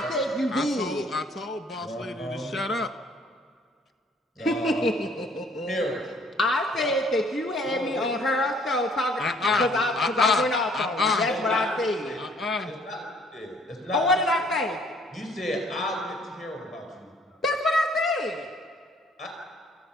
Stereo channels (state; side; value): normal; both; correlation 0.60